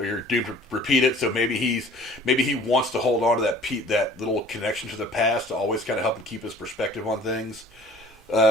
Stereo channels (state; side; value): normal; both; correlation 0.50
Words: or you're doomed to repeat it. So maybe he wants to hold on to that little connection to the past to always kind of help him keep his perspective on things.